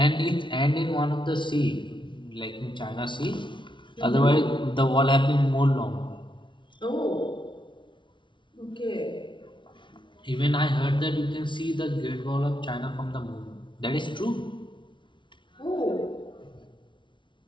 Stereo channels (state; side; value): late; right; 0.24 ms